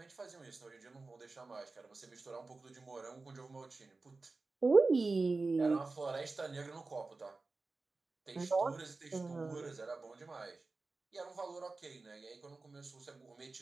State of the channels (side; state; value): left; quieter; 3.7 dB